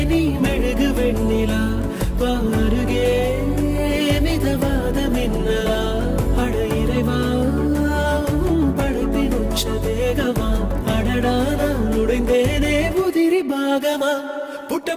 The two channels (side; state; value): both; identical; correlation 1.00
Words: நீ மெழுகு வெண்ணிலா பாருகே மிதவாத மின்னலா அட இறைவா படைப்பின் உச்ச வேகமா அடடா நான் உடைந்தேனே உதிரி பாகமா புட்ட